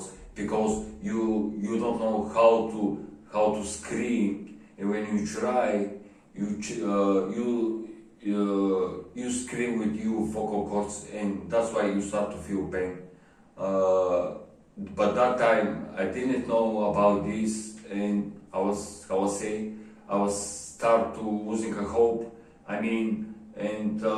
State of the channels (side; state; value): both; identical; correlation 1.00